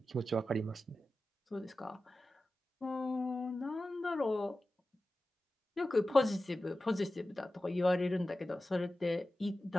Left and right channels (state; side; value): normal; both; correlation 0.94